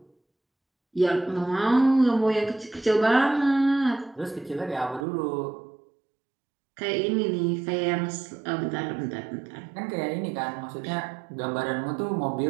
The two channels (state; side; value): drops out; left; at 5.1 s